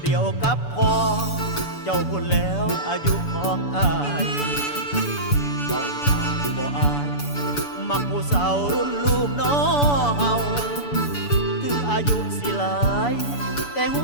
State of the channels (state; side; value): late; right; 6.9 ms